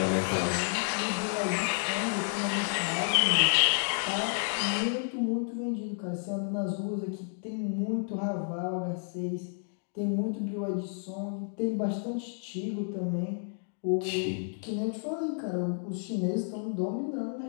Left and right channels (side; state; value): right; silent; digital silence